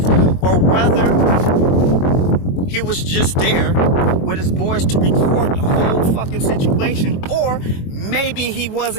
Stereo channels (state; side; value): late; right; 23 ms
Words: or whether he was just there with his boys to record the whole fucking situation, or maybe he